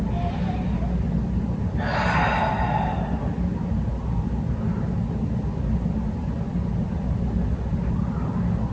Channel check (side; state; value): both; identical; correlation 1.00